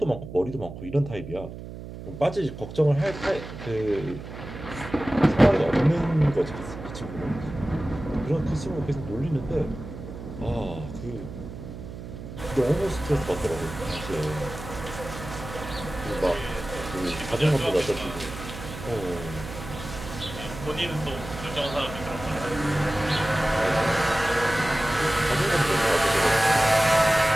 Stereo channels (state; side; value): noise; right; hum, 11 dB below the sound